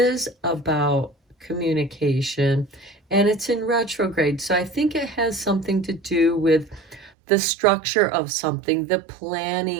about communication, and it's in retrograde. So I think it has something to do with the structure of something, the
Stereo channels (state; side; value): drops out; left; at 7.1 s